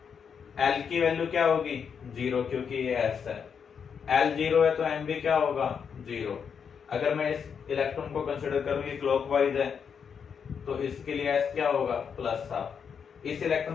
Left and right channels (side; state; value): right; quieter; 6.8 dB